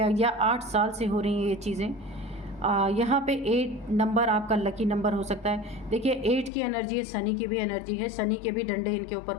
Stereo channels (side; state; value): right; drops out; at 6.5 s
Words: या 8 साल से हो रही हैं ये चीज़ें। यहाँ पे 8 नंबर आपका लकी नंबर हो सकता है। देखिए 8 की एनर्जी है, शनि की भी एनर्जी है, शनि के भी डंडे इनके